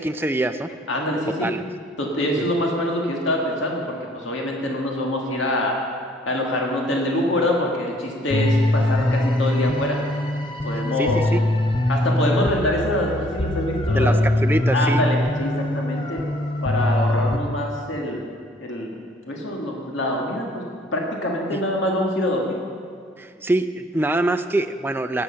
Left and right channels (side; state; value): both; normal; correlation 0.61